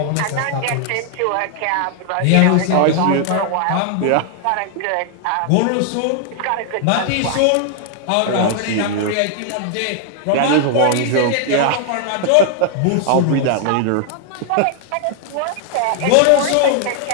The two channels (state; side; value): different; both; correlation 0.00